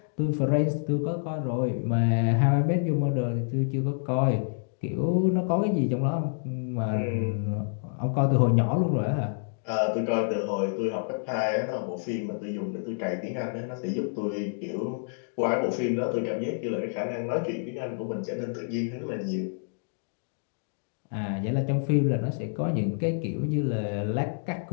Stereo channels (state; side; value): silent; right; digital silence